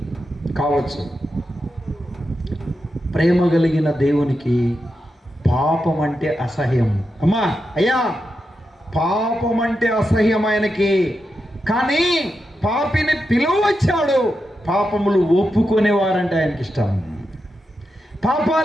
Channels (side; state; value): both; normal; correlation 0.88